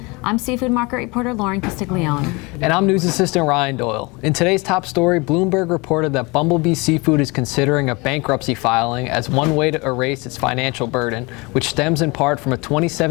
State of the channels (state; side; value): quieter; right; 26.5 dB